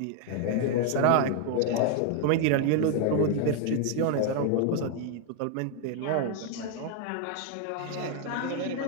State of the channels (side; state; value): both; different; correlation 0.00